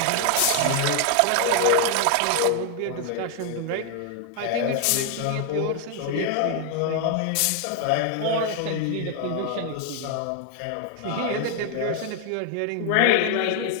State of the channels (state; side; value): different; both; correlation 0.00